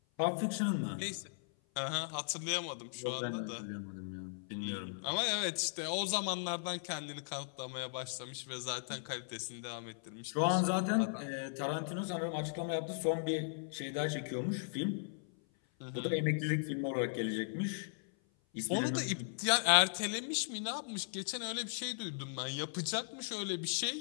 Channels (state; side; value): silent; right; 53 dB below the other